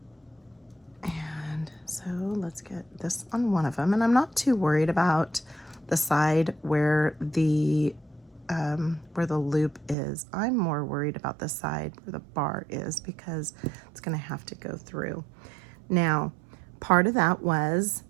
And so let's get this on one of them. And I'm not too worried about the side where the where the loop is. I'm more worried about the side where the bar is because it's gonna have to go through. Now, part of that was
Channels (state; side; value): drops out; left; at 10.0 s